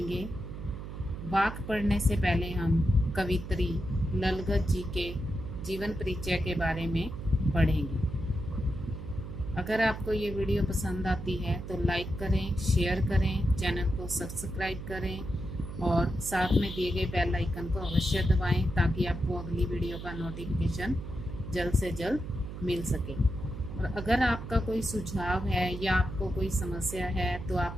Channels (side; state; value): right; noise; hum, 9 dB below the sound